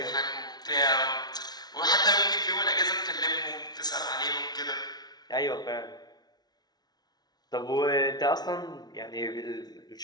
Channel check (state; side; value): late; right; 0.19 ms